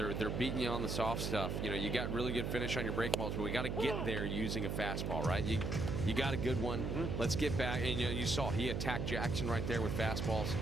beating you on the soft stuff. You know, you got really good finish on your breaking balls, but we got to get there using a fastball, right? You got a good one. Let's get back. And you know, you saw he attacked Jackson right there with fastballs.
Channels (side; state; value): right; noise; hum, 1 dB below the sound